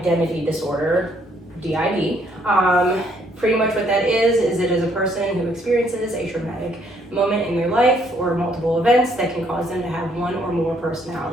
disorder, DID. Pretty much what that is it is a person who experiences a traumatic moment in their life or multiple events that can cause them to have one or more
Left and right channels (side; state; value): both; normal; correlation 0.68